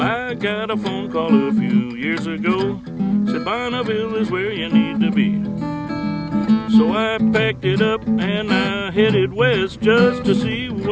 I got a phone call a few years ago, said Bonneville is where you need to be. So I packed it up and I headed west just to see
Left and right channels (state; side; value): identical; both; correlation 1.00